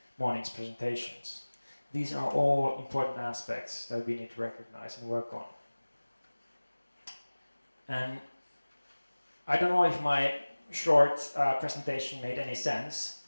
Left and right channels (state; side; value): inverted; both; correlation -1.00